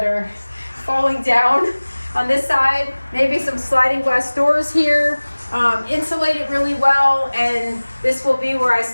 are falling down on this side, maybe some sliding glass doors here, insulate it really well, and this will be where I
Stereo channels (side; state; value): both; inverted; correlation -1.00